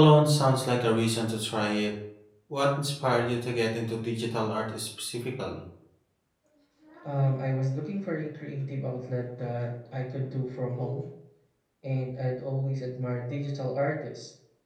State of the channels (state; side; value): identical; both; correlation 1.00